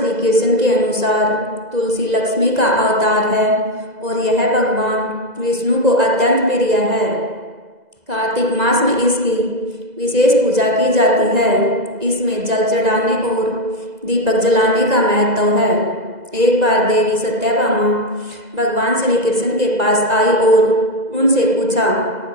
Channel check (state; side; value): late; left; 2.0 ms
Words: कृष्ण के अनुसार तुलसी लक्ष्मी का अवतार है और यह भगवान विष्णु को अत्यंत प्रिय है। कार्तिक मास में इसकी विशेष पूजा की जाती है। इसमें जल चढ़ाने और दीपक जलाने का महत्व है। एक बार देवी सत्यभामा भगवान श्री कृष्ण के पास आई और उनसे पूछा